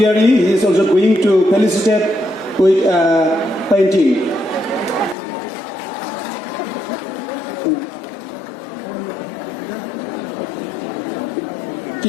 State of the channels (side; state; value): right; drops out; at 5.2 s